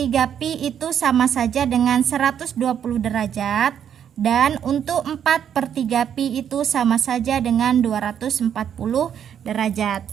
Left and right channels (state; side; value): quieter; left; 8.9 dB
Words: pi itu sama saja dengan 120 derajat, dan untuk 4/3 pi itu sama saja dengan 240 derajat.